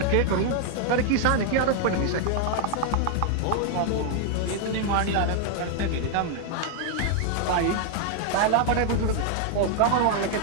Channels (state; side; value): different; both; correlation 0.00